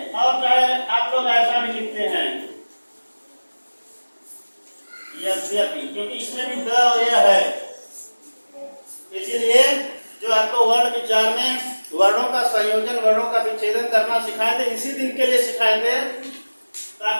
और चाहे आप लोग ऐसा भी लिखते हैं यद्यपि, क्योंकि इसमें भी द और यह है, इसीलिए जो आपको वर्ण विचार में वर्णों का संयोजन, वर्णों का विच्छेदन करना सिखाए थे, इसी दिन के लिए सिखाए थे,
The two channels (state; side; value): inverted; both; correlation -1.00